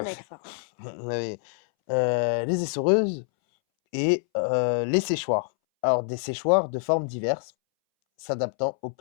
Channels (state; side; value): silent; right; 61 dB below the other